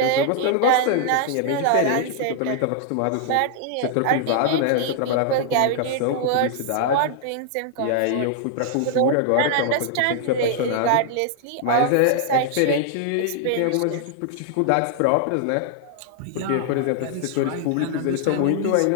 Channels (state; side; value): different; both; correlation 0.00